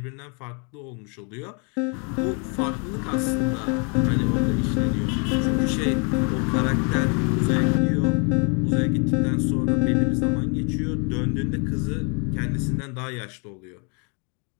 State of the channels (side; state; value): right; quieter; 36.2 dB